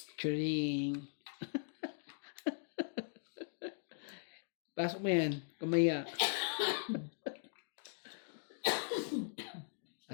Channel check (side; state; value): right; silent; digital silence